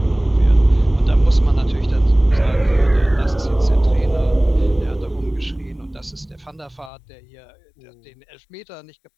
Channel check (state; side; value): drops out; right; at 6.9 s